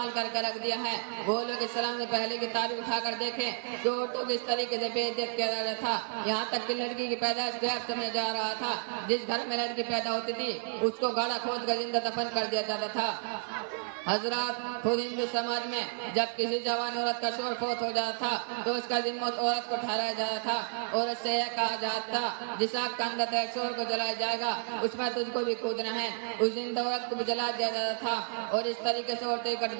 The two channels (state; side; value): silent; left; 57 dB below the other